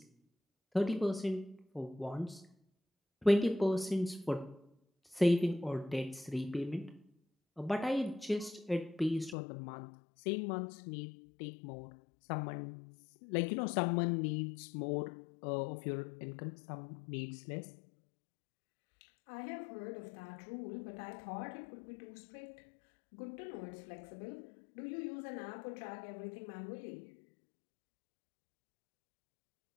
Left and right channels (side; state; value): right; drops out; at 9.3 s